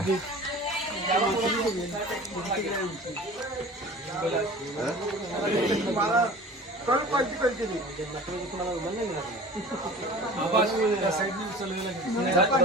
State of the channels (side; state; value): both; normal; correlation 0.41